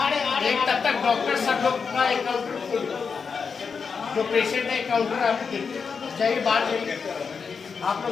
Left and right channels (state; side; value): quieter; right; 5.6 dB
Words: एक तब तक डॉक्टर सब लोग का काउंटर खोल दो, जो पेशेंट है काउंटर आपको देखिए, चाहिए बाहर जाइए, आप